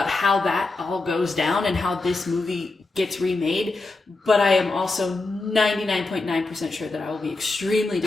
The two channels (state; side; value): quieter; right; 3.4 dB